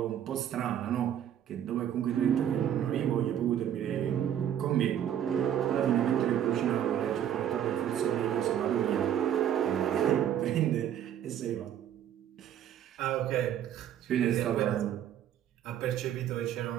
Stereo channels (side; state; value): left; quieter; 10.2 dB